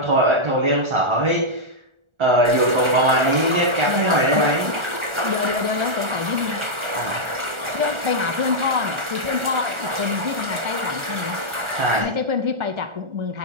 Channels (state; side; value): late; left; 1.4 ms